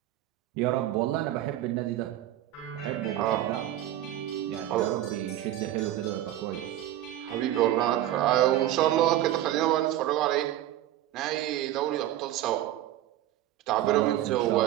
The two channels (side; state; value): left; quieter; 13.4 dB